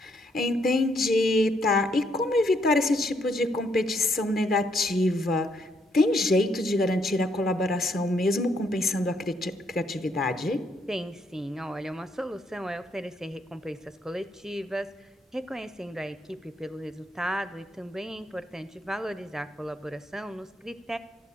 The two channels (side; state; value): both; normal; correlation 0.73